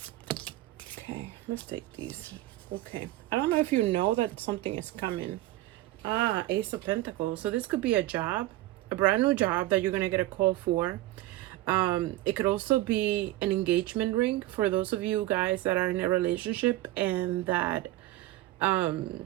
Okay, let's take these. Okay, I don't know if you know that something is coming. Ah, Ace of Pentacles. So this could be a job, a brand new job that you're gonna get a call for. It could also be an engagement ring for those of you guys that are in a relationship and that,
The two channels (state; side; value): quieter; left; 16.6 dB